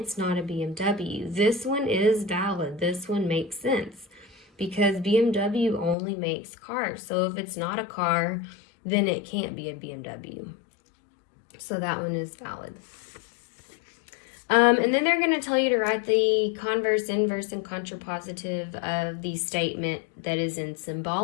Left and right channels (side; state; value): right; drops out; at 6.0 s